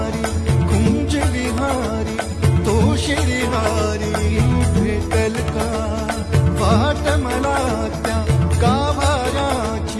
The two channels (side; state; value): both; identical; correlation 1.00